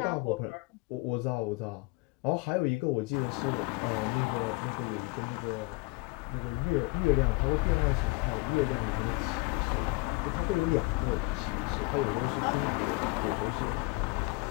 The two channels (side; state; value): right; quieter; 25.6 dB